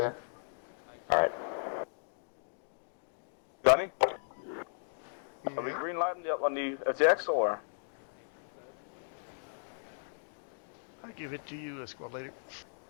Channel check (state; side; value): silent; right; digital silence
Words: Alright. Johnny? Are we green lighting up on the FTX or? I give it to you, squad leader.